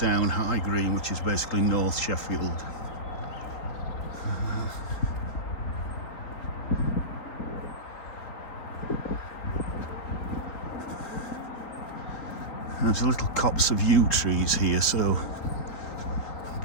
High Green, which is basically North Sheffield. There's a little copse of yew trees here, so I'm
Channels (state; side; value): late; right; 3.9 ms